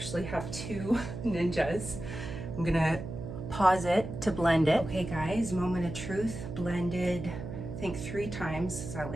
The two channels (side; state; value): right; noise; hum, 8 dB below the sound